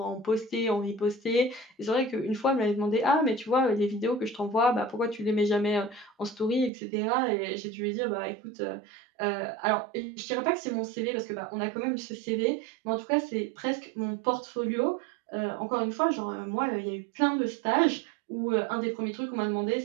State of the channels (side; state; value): left; drops out; at 6.7 s